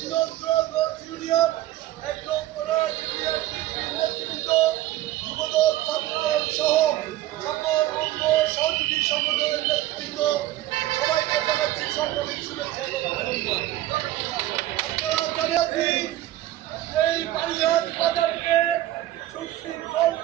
নন্দ্রগঞ্জ union, ১ নং কোরআন union নেতৃবৃন্দ, যুবদল, ছাত্রদল সহ সকল অঙ্গ সহযোগী সংগঠনের নেতৃবৃন্দ সবাইকে জানাচ্ছি সরকারি শুভেচ্ছা এবং অভিনন্দন। আপনারা জানেন এই বাড়িয়ার বাজারকে সুশৃঙ্খল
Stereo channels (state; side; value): quieter; left; 14.8 dB